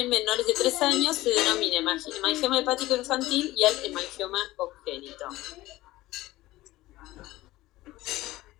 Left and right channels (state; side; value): quieter; right; 17.5 dB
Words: menores de 3 años, se denomina hemangioma hepático infantil y el hemangioma congénito.